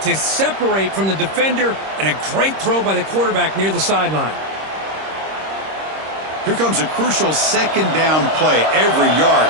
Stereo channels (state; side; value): late; left; 26 ms